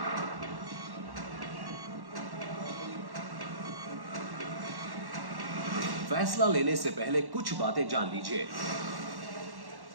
फैसला लेने से पहले कुछ बातें जान लीजिए।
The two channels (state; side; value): late; left; 1.1 ms